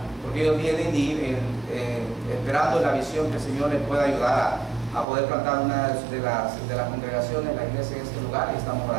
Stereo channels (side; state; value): left; drops out; at 5.1 s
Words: porque ellos vienen y esperando la visión que el Señor les pueda ayudar a poder plantar una de las congregaciones, la iglesia en este lugar, y estamos